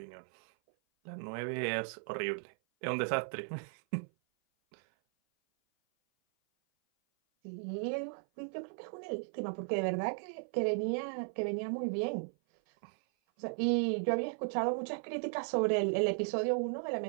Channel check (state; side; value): silent; left; 54 dB below the other